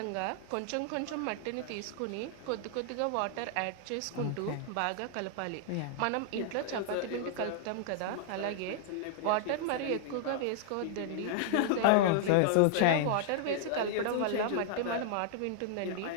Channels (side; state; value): both; different; correlation -0.01